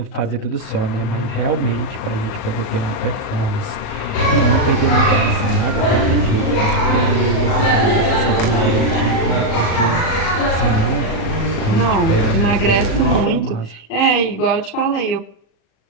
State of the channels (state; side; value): late; right; 37 ms